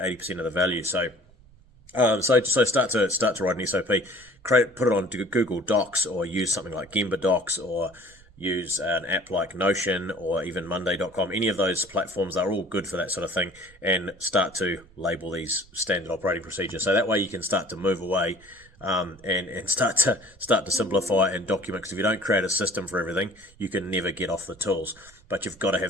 of the value. So start to write an SOP, put it on Google Docs, or use something like Gemba Docs, or use an app like Notion, or even Monday.com. Any of those platforms are all good for that sort of thing, and start to label these standard operating procedures. So that way you can start to move away, and start to simplify and document. Because if you don't create a system for everything, you can never get off the tools. But you've got to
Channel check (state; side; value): noise; right; rumble, 27 dB below the sound